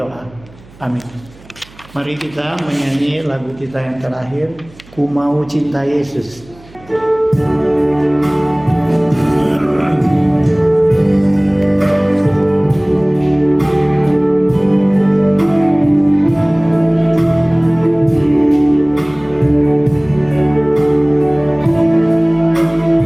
Amin. Mari kita menyanyi lagu kita yang terakhir, Ku Mau Cinta Yesus.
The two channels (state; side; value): noise; right; hum, 24 dB below the sound